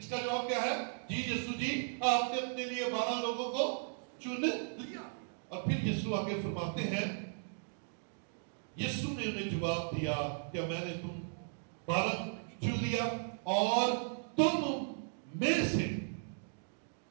کا جواب کیا ہے؟ جی یسوع جی، آپ نے اپنے لیے 12 لوگوں کو چن لیا. اور پھر یسوع آگے فرماتے ہیں، یسوع نے انہیں جواب دیا، کیا میں نے تم 12 کو چن لیا؟ اور تم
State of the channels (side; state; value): left; silent; digital silence